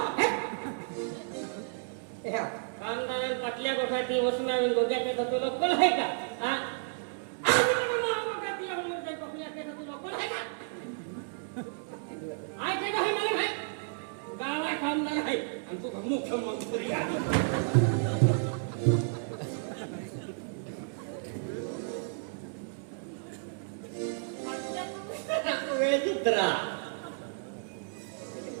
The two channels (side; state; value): left; silent; digital silence